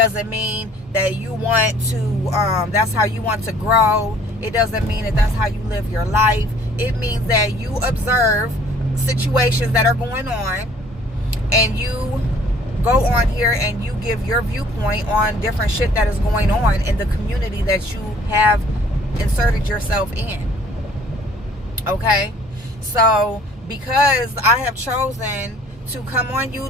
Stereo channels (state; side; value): normal; both; correlation 0.55